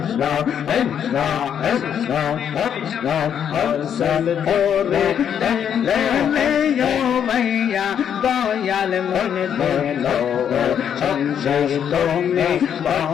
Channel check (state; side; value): quieter; right; 8.6 dB